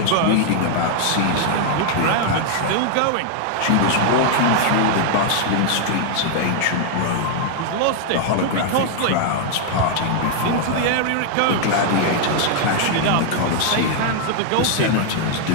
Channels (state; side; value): different; both; correlation 0.00